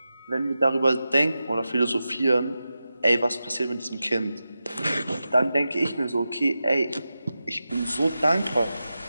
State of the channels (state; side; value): inverted; both; correlation -0.92